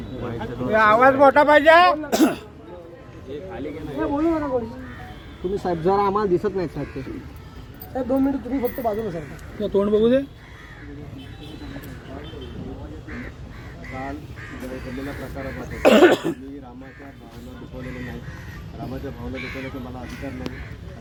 आवाज मोठा पाहिजे. तुम्ही साहेब जरा आम्हाला दिसत नाही साहेब ते. 2 मिनिट तुम्ही फक्त बाजूला सरका. तोंड बघू दे. काल घडलेल्या प्रकारामध्ये मी रामाच्या भावना दुखवलेल्या नाही. रामाच्या भावना दुखवण्याचा मला अधिकार नाही.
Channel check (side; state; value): both; identical; correlation 1.00